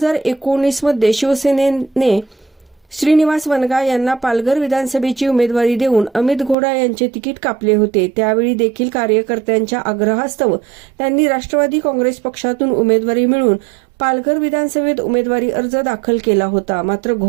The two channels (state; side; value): drops out; left; at 6.6 s